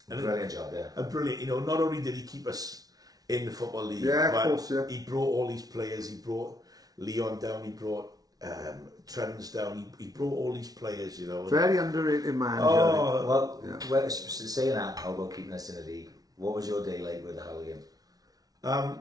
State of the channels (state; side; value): late; left; 0.18 ms